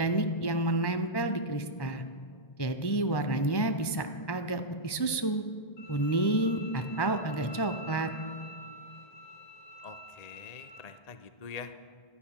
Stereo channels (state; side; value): late; right; 1.2 ms